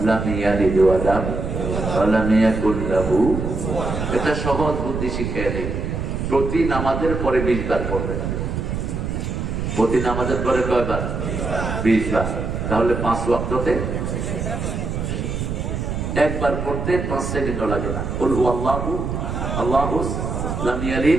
লাম ইয়ালিদ ওয়া লাম ইয়াকুল লাহু। এটা সহজ বুদ্ধি শিখিয়ে দেই। প্রতি নামাজের পরে 20 বার পড়বে। প্রতি নামাজের পরে কয়বার? 20 বার। তাহলে 5 ওয়াক্ততে একবার পড়তে 5 সেকেন্ড লাগে না। কুল হু আল্লাহু আল্লাহু লাম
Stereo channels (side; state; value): right; noise; rumble, 3 dB below the sound